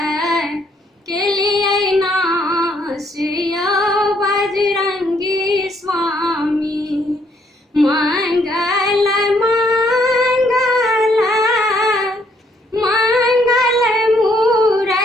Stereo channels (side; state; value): both; normal; correlation 0.69